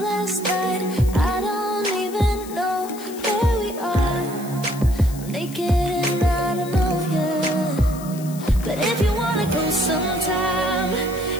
last night. I don't even know where we are. I'm naked and I don't know you. But if you wanna go sometime,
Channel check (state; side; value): noise; left; hiss, 16 dB below the sound